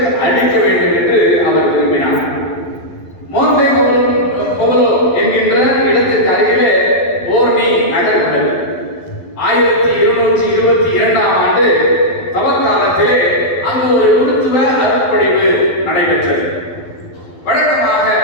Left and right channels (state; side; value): late; right; 12 ms